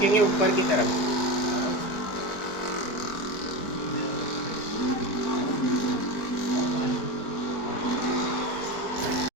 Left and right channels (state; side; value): late; right; 4.4 ms